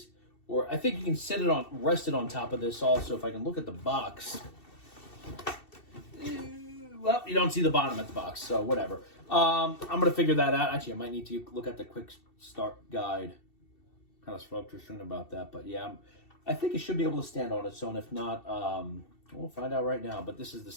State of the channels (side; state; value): right; late; 2.7 ms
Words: or I think you can rest it on top of this also. If I can look at the box, well, you don't see the bottom of the box, so whatever. I'm gonna figure that out. Actually, I might need to look at the quick start guide. Kind of spoke to soon about that, but yeah, I think it should be able to stand on its own. If not, we'll find out right now. But this is the